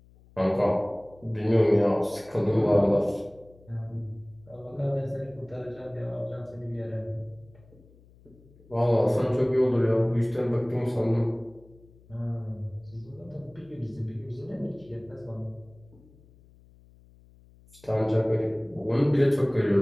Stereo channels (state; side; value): noise; left; hum, 26 dB below the sound